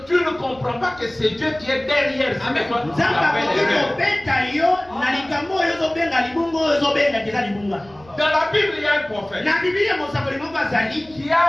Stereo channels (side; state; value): right; noise; rumble, 25 dB below the sound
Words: tu ne comprends pas que c'est Dieu qui est derrière. Dans la Bible, il y a un prophète qui